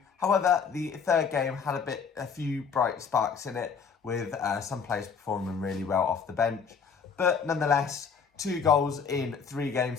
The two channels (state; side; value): quieter; right; 6.1 dB